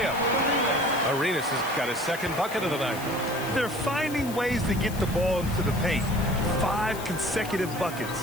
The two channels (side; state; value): left; noise; hiss, 14 dB below the sound